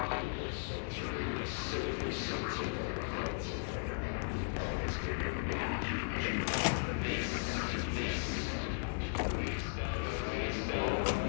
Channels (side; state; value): right; silent; digital silence